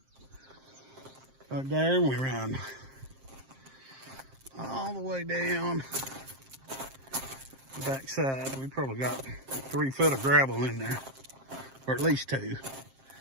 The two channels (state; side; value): late; left; 7.5 ms